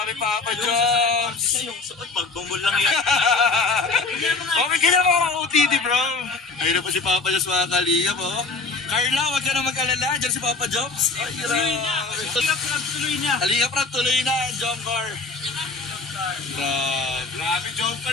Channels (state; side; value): quieter; right; 3.9 dB